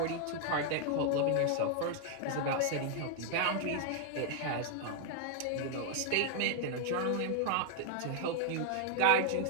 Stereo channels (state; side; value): different; both; correlation 0.00